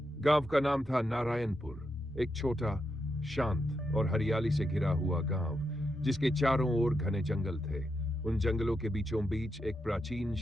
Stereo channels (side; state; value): both; normal; correlation 0.84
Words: गांव का नाम था नारायणपुर, एक छोटा, शांत और हरियाली से घिरा हुआ गांव, जिसके चारों ओर घने जंगल थे। उन जंगलों के बीचों बीच एक प्राचीन